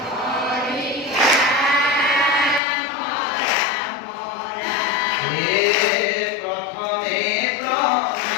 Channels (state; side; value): drops out; right; at 2.6 s